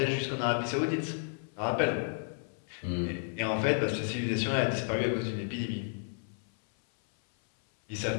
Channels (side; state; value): right; silent; 56 dB below the other